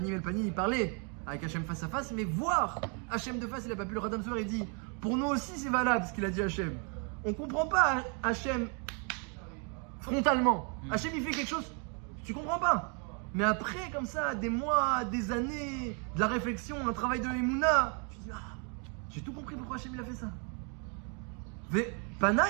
el Panim, il parlait avec Hachem face à face, mais voir Hachem de face, il n'a pas pu. Le Khatam Sofer, il dit, pour nous aussi c'est valable ce qu'il a dit Hachem. On comprend pas Hachem frontalement. Hachem il fait quelque chose, tu comprends pas. Mais après, comme ça, des mois, des années, de la réflexion, un travail de Emouna, tu dis, j'ai tout compris pourquoi Hachem il a fait ça. Pana,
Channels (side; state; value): left; quieter; 37.8 dB